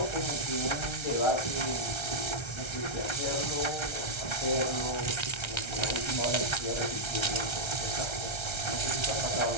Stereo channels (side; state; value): right; late; 1.3 ms